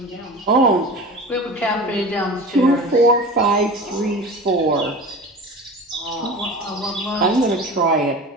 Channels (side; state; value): both; normal; correlation 0.34